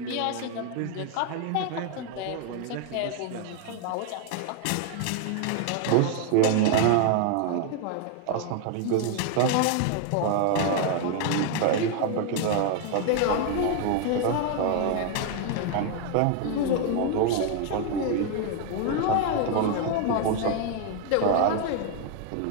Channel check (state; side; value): different; both; correlation 0.00